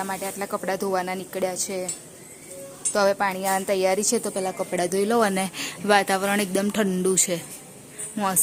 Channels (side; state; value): both; identical; correlation 1.00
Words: માટે આટલા કપડાં ધોવાના નીકળ્યા છે. તો હવે પાણી આવવાની તૈયારી છે તો પહેલાં કપડાં ધોઈ લઉં. અને વાતાવરણ એકદમ ઠંડુ છે,